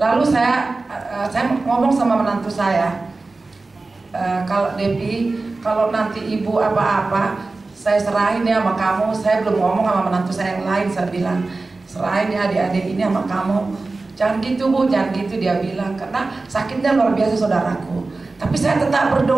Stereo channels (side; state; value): left; quieter; 3.5 dB